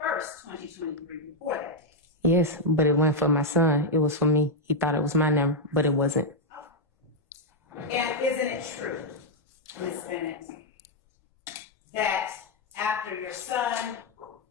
2023, before that day? Yes, but it wasn't for my son. It was for me. He thought it was my number, but it wasn't. And isn't it true, Ms. Bennett, that after your son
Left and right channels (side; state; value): both; normal; correlation 0.00